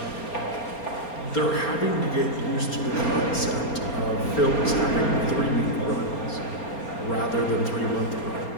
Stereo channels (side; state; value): right; late; 4.3 ms